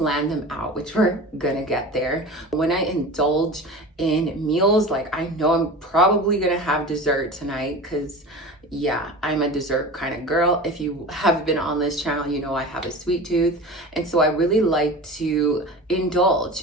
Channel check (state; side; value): normal; both; correlation 0.33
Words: them out, which we're gonna get there. When I indulge in meals, like I know I'm probably gonna have dessert tonight, because yeah, I'm a dessert kind of girl. If you have been on this channel, you know I have a sweet tooth. And so I really like to